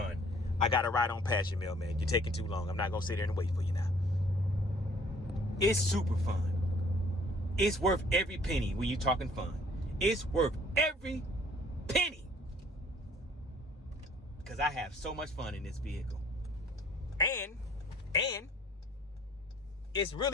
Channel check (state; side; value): normal; both; correlation 0.57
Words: I got to ride on past you, mailman. You're taking too long. I'm not going to sit there and wait for you now. It's super fun. It's worth every penny when you're talking fun. It's worth every penny. Because I have so much fun in this vehicle. And it's